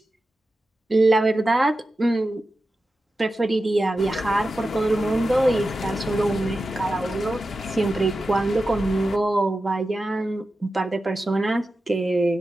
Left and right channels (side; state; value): both; normal; correlation 0.92